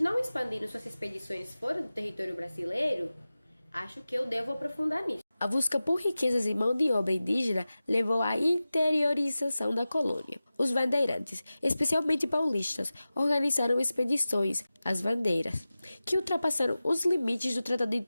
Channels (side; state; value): both; inverted; correlation -0.96